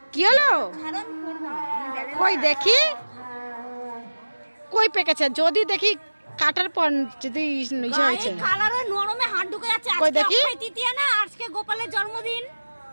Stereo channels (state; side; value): inverted; both; correlation -1.00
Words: কি হলো কই দেখি, কই পেকেছে যদি দেখি কাটার পর যদি ইয়ে হয়েছে। কালারে নরমে হাত ঢুকে যাচ্ছে। কই দেখি, আজকে তৃতীয়া না, আজকে গোপালের জন্মদিন,